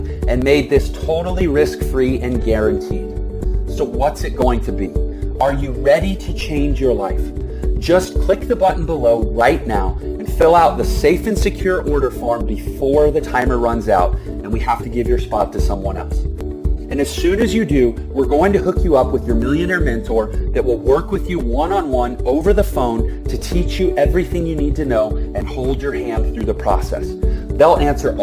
made this totally risk-free and guaranteed. So what's it going to be? Are you ready to change your life? Just click the button below right now and fill out the safe and secure order form before the timer runs out and we have to give your spot to someone else. And as soon as you do, we're going to hook you up with your millionaire mentor that will work with you one-on-one over the phone to teach you everything you need to know and hold your hand through the process. They'll answer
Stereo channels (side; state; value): both; identical; correlation 1.00